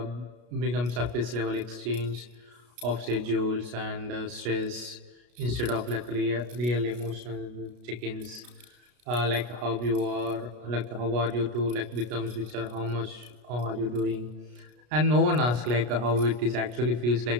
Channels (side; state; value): left; late; 33 ms